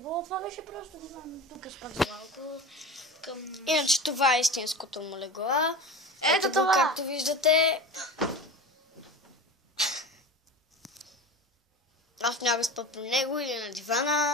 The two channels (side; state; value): both; normal; correlation 0.31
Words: Това беше просто диван. Тук спах за малко. Иначе това е истинското му легло. Ето го, това! както виждате. Аз няма спа при него или на